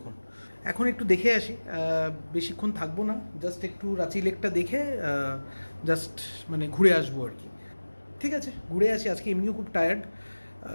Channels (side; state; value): both; inverted; correlation -1.00